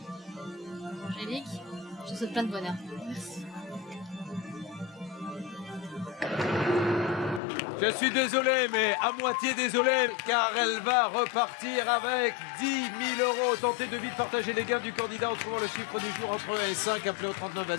Angélique, je te souhaite plein de bonheur. Merci. Je suis désolé, mais à moitié désolé, car elle va repartir avec 10 000 euros. Tentez de vite partager les gains du candidat en trouvant le chiffre du jour entre 1 et 5. Appelez au 39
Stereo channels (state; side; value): drops out; right; at 7.4 s